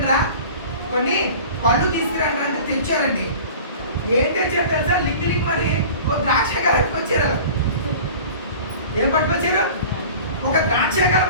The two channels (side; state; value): both; inverted; correlation -0.41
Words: పళ్ళు తీసుకురండి అంటే తెచ్చారండి. ఏం తెచ్చారు తెలుసా? లిక్కి మరి ఓ ద్రాక్ష గల పట్టుకొచ్చారు. ఏం పట్టుకొచ్చారు? ఒక ద్రాక్ష గల